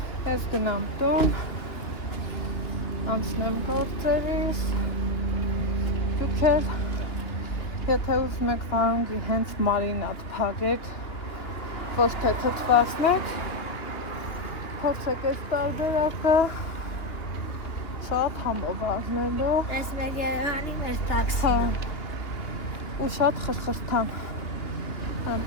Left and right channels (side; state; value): right; late; 2.9 ms